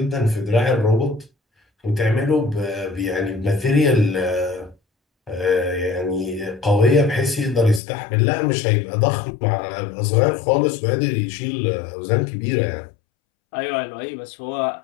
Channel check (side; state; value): right; drops out; at 7.8 s